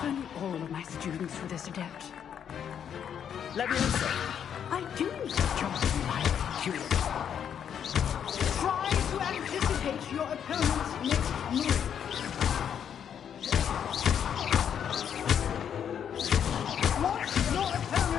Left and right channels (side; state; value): right; quieter; 8.5 dB